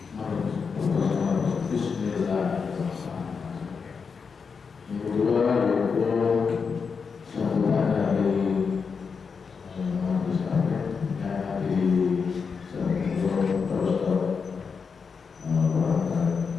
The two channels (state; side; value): quieter; right; 5.6 dB